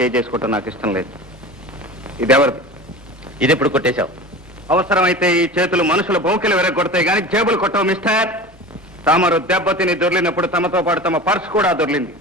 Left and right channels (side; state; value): both; normal; correlation 0.34